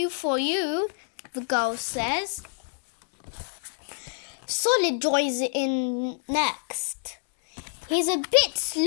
for you, the girl says. Solid joins in next. He's a bit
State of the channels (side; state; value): right; silent; digital silence